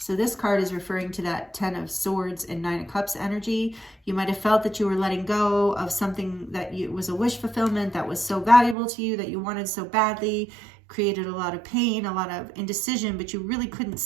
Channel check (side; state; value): left; drops out; at 8.8 s